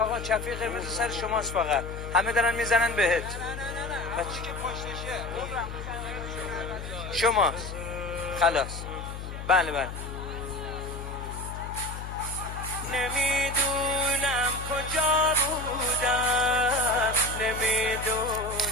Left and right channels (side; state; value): left; noise; hum, 8 dB below the sound